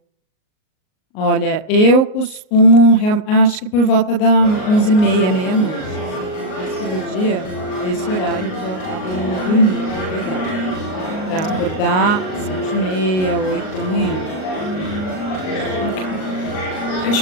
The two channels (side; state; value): right; late; 38 ms